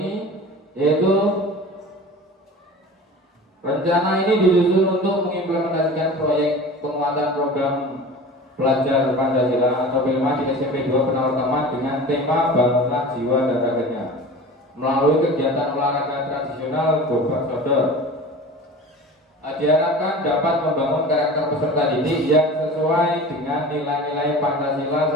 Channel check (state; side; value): normal; both; correlation 0.37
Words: yaitu Rencana ini disusun untuk mengimplementasikan proyek penguatan program belajar Pancasila atau P5 di SMP 2 Penawartama dengan tema bangunlah jiwa dan raganya melalui kegiatan olahraga tradisional Gobak Sodor. Diharapkan dapat membangun karakter peserta didik yang sesuai dengan nilai-nilai Pancasila